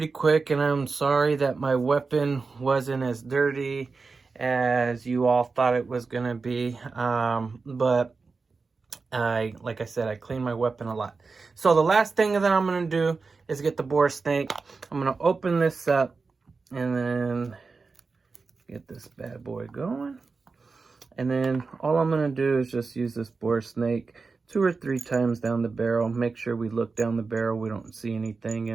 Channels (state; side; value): quieter; left; 4.4 dB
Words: quick, and I'm sorry that my weapon wasn't as dirty as you all thought it was gonna be, but like I said, I clean my weapon a lot. So the last thing that I'm going to do is get the bore snake. I'm going to open this up and then get this bad boy going. And then all I'm going to do is just use this bore snake 2 or 3 times down the barrel. Make sure we look down the barrel. We don't see anything